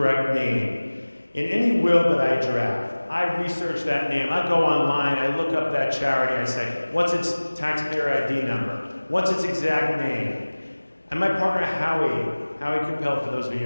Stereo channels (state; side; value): inverted; both; correlation -1.00